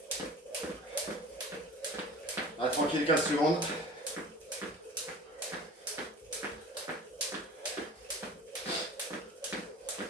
Allez, tranquille, 15 secondes.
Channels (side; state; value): both; normal; correlation 0.40